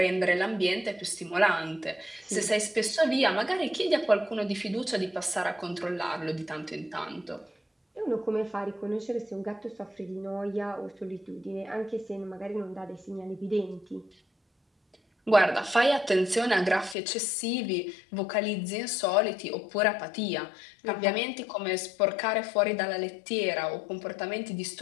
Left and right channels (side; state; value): right; drops out; at 16.9 s